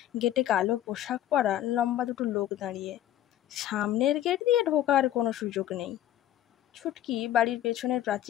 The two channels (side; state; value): right; quieter; 12.4 dB